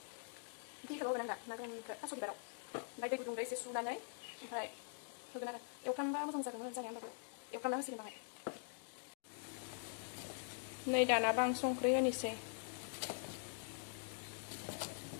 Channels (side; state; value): right; silent; digital silence